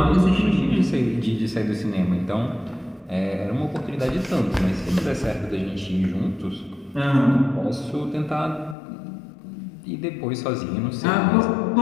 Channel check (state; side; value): drops out; right; at 8.8 s